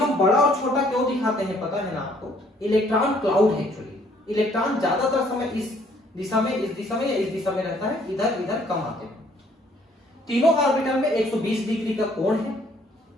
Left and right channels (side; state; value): both; normal; correlation 0.63